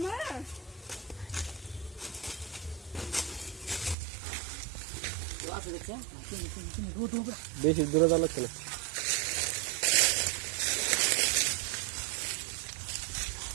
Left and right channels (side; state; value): left; drops out; at 4.0 s